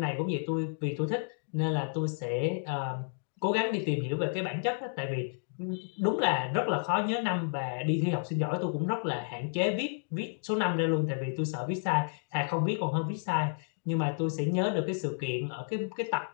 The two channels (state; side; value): silent; right; digital silence